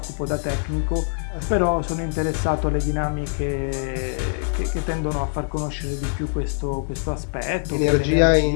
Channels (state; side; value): silent; right; digital silence